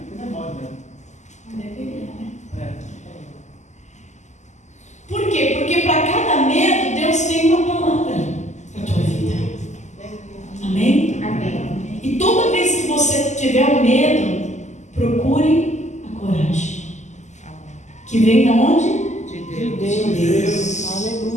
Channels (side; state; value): right; late; 0.34 ms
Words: não é mole, né? Não deveria, né? É. Por quê? Porque para cada medo, Deus tem uma palavra para a tua vida. Amém? Amém. E toda vez que você tiver o medo, procure a coragem. Que vem de onde? De Deus.